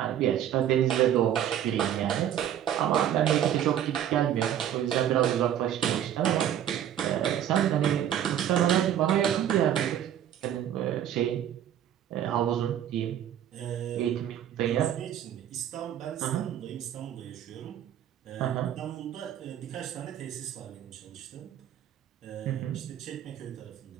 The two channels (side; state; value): left; quieter; 10.5 dB